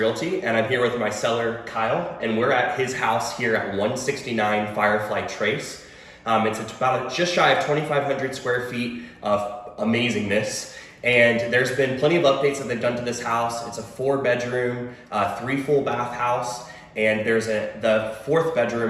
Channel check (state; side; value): identical; both; correlation 1.00